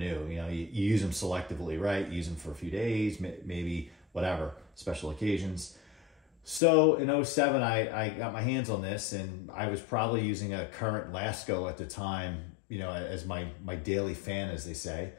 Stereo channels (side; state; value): right; drops out; at 6.6 s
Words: You use them selectively, right? You use them for a few days, maybe whatever, special occasions. So in 2007, I got my hands on this, and I was probably using a current Lasco at the time, as my daily fan, as they say.